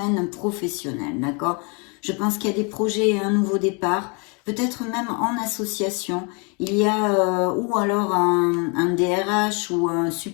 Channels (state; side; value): quieter; right; 33.5 dB